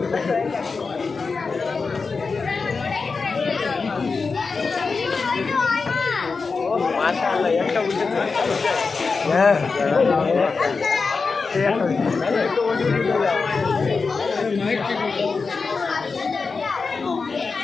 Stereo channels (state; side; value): quieter; right; 4.6 dB